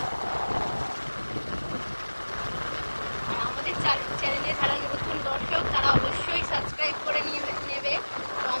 আমাদের চ্যানেলে যারা নতুন দর্শক, তারা অবশ্যই সাবস্ক্রাইব করে নেবে তো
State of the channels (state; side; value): inverted; both; correlation -1.00